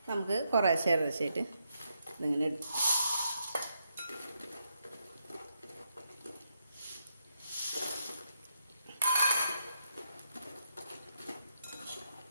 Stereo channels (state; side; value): inverted; both; correlation -0.80